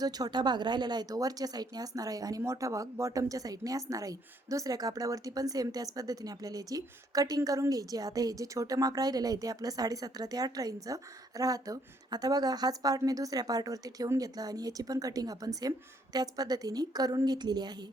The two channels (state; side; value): normal; both; correlation 0.68